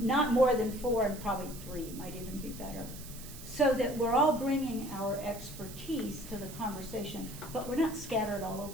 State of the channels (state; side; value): noise; right; hiss, 14 dB below the sound